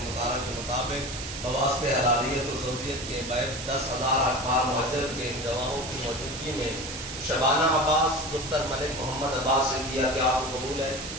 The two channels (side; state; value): right; noise; hiss, 8 dB below the sound